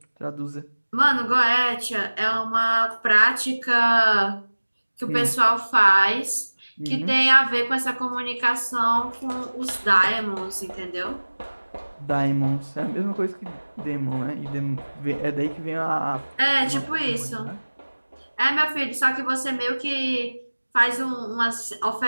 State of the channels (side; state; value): both; inverted; correlation -1.00